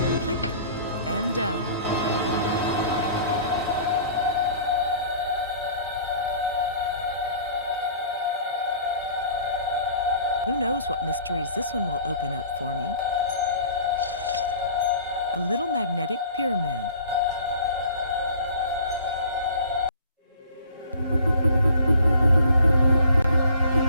Click and done. Who knows what mysteries this one will open up for me? A little magnetic pyramid.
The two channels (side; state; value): both; inverted; correlation -0.49